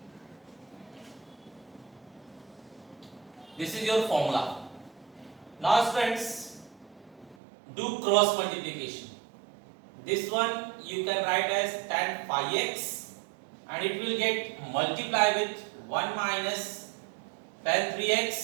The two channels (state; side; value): drops out; left; at 7.4 s